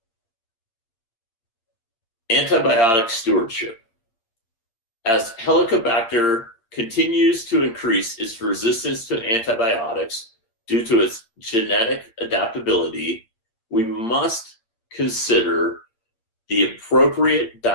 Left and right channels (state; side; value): late; right; 8.7 ms